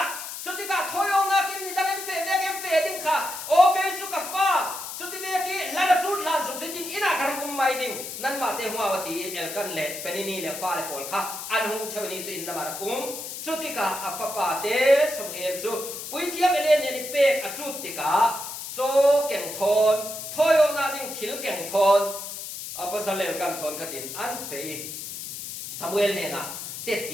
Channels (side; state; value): left; noise; hiss, 8 dB below the sound